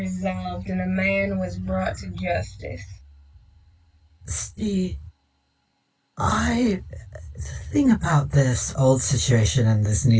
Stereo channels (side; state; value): both; identical; correlation 1.00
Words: and a man was brought to justice. See, the thing about this old situation and this